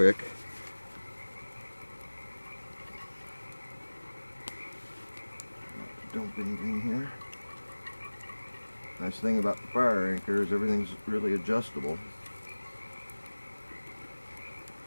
Not dump anything here. Nice thing about the fire anchor is everything's really adjustable.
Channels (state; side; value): inverted; both; correlation -1.00